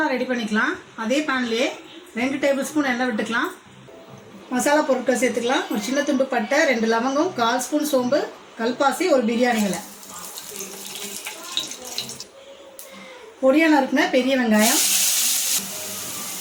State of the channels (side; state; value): both; identical; correlation 1.00